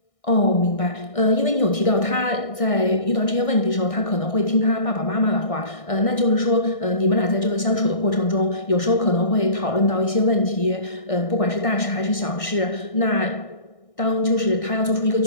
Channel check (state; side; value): late; right; 1.6 ms